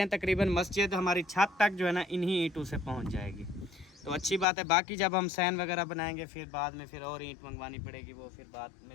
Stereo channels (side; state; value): right; drops out; at 4.5 s